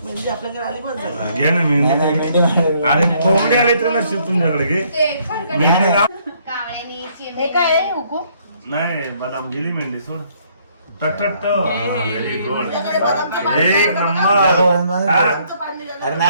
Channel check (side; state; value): both; inverted; correlation -0.66